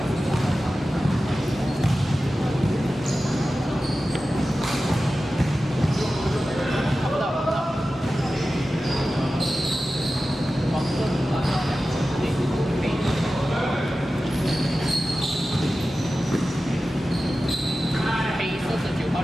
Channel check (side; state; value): both; normal; correlation 0.94